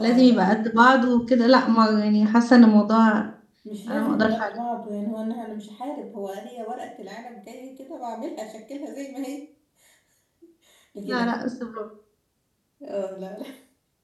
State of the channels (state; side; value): identical; both; correlation 1.00